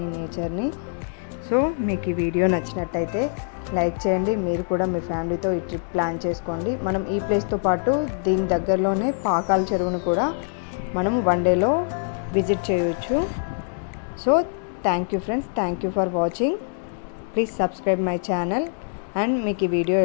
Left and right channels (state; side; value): silent; right; digital silence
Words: నేచర్ని. సో మీకు ఈ వీడియో నచ్చినట్టయితే లైక్ చేయండి. మీరు కూడా మీ ఫ్యామిలీతో ఈ ట్రిప్ ప్లాన్ చేసుకోండి. మనం ఈ ప్లేస్తో పాటు దీని దగ్గరలోనే పాకాల చెరువును కూడా మనం వన్ డేలో విజిట్ చేయవచ్చు. So thank you friends, thank you for watching. Please subscribe my channel. And మీకు ఈ వీడియో